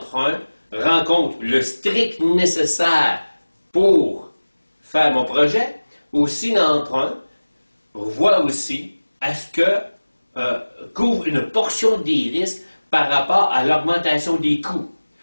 rencontrent le strict nécessaire pour faire mon projet? Ou si l'emprunt voit aussi, est-ce que couvre une portion des risques par rapport à l'augmentation des coûts?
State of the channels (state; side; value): inverted; both; correlation -1.00